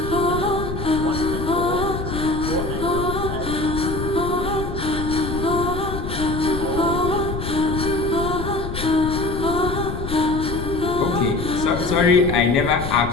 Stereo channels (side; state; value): left; noise; rumble, 6 dB below the sound